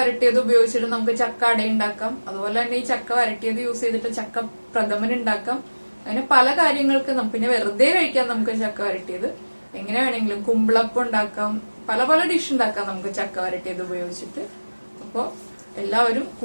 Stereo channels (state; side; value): inverted; both; correlation -1.00